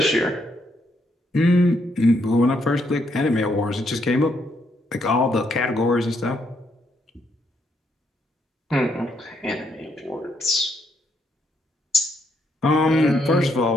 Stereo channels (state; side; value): normal; both; correlation 0.75